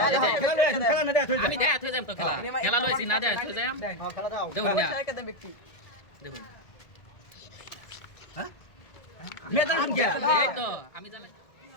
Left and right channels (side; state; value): right; late; 1.7 ms